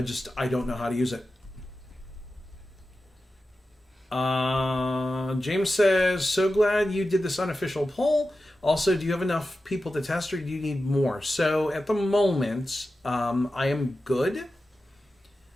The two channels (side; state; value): both; normal; correlation 0.92